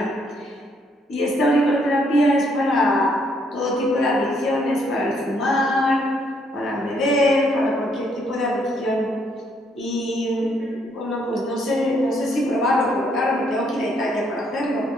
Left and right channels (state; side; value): normal; both; correlation 0.70